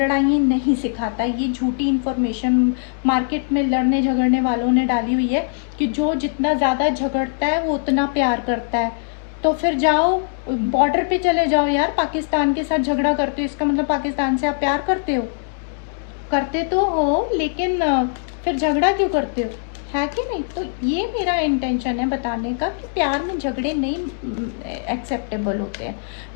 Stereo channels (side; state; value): right; silent; digital silence